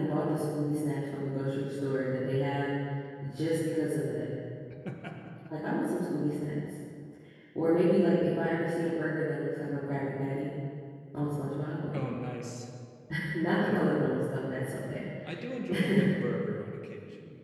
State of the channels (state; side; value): identical; both; correlation 1.00